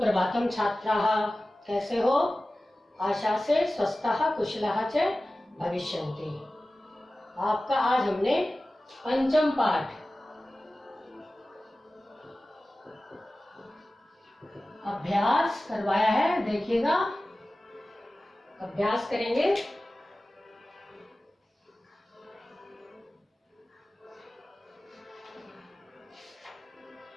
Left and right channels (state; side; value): normal; both; correlation 0.96